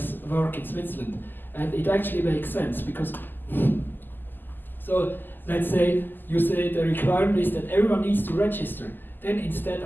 work in Switzerland. And it actually makes sense because, so let's say you say the requirement is that everyone needs to register. Then instead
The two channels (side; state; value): right; late; 0.091 ms